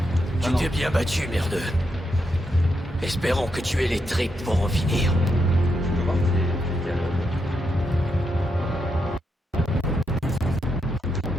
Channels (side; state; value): both; normal; correlation 0.82